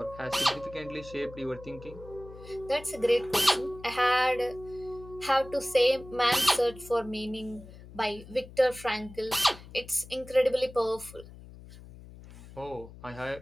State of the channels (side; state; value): left; noise; hum, 17 dB below the sound